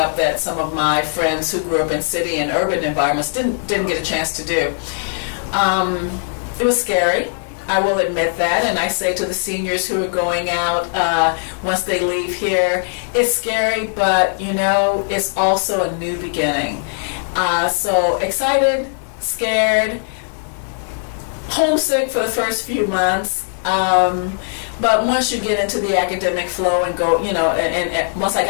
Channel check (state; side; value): silent; right; digital silence